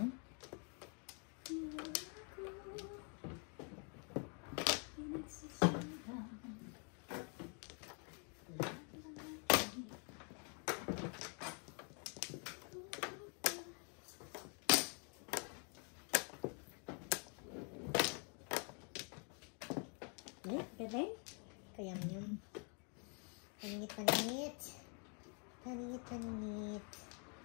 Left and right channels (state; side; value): quieter; right; 38.9 dB